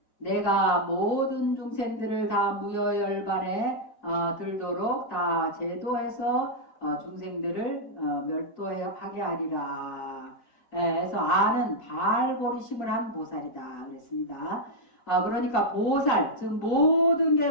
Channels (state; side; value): late; right; 3.9 ms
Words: 내가 모든 중생들을 다 무여열반에 들도록 다 제도해서 중생들을 멸도하게 하리라. 그래서 아는 발보리심을 한 보살이다 그랬습니다. 그러니까 보살, 즉 모든